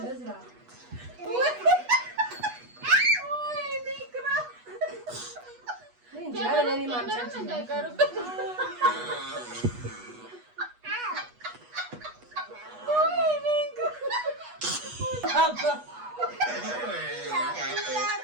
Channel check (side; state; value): left; late; 8.2 ms